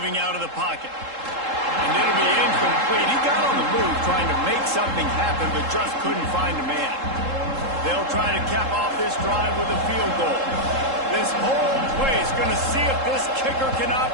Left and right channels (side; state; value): left; late; 3.7 ms